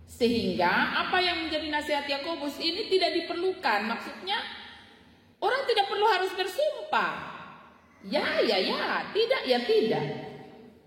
Sehingga apa yang menjadi nasihat Yakobus ini tidak diperlukan. Maksudnya orang tidak perlu harus bersumpah. Ya, tidak, ya tidak.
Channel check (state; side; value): identical; both; correlation 1.00